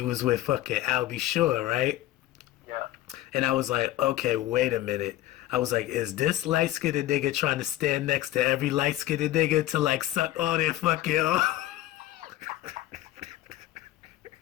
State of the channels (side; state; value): right; quieter; 15.0 dB